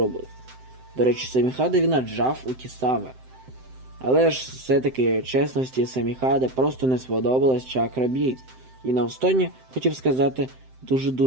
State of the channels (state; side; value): late; left; 7.8 ms